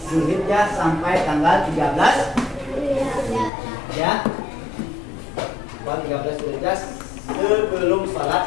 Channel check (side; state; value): right; drops out; at 3.5 s